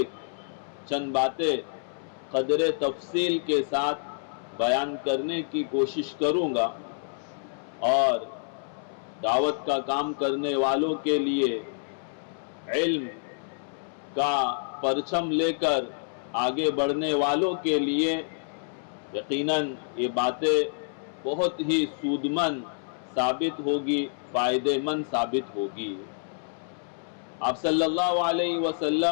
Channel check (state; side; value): silent; right; 59 dB below the other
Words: چند باتیں قدر تفصیل کے ساتھ بیان کرنے کی کوشش کروں گا، اور دعوت کا کام کرنے والوں کے لیے علم کا پرچم لے کر آگے بڑھنے والوں کے لیے یقیناً یہ باتیں بہت ہی سود مند ثابت ہوگی، فائدہ مند ثابت ہوگی۔ آپ صلی اللہ علیہ